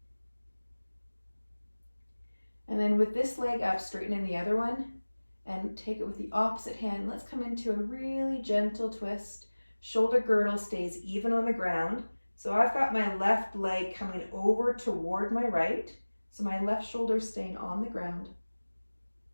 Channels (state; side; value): inverted; both; correlation -1.00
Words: And then with this leg up, straighten in the other one and take it with the opposite hand. Let's come into a really gentle twist. Shoulder girdle stays even on the ground. So I've got my left leg coming over toward my right. So my left shoulder is staying on the ground.